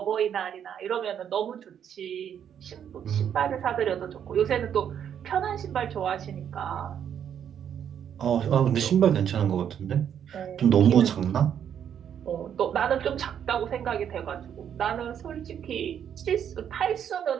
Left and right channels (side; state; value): left; quieter; 8.9 dB